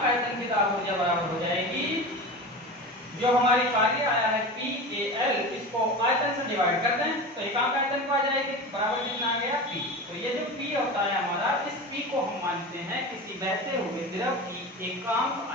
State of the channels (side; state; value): both; normal; correlation 0.29